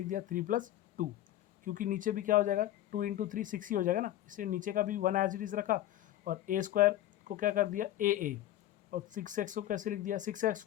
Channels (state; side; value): quieter; right; 13.4 dB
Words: दिया 3 + 2, क्योंकि नीचे भी क्या हो जाएगा 2 इंटू 3 6 ही हो जाएगा ना, इसलिए नीचे का भी 1 एज इट इज़ रखा और a² को क्या कर दिया a और 6x को कैसे लिख दिया